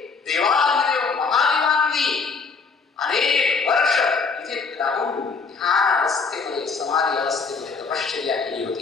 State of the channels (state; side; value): quieter; right; 4.9 dB